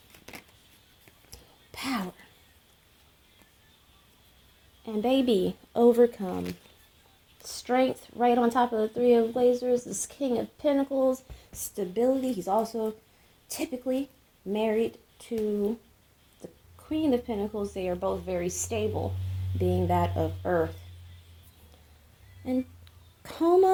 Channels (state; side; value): identical; both; correlation 1.00